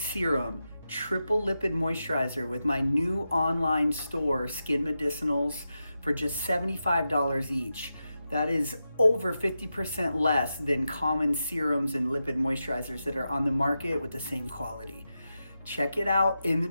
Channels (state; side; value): inverted; both; correlation -0.90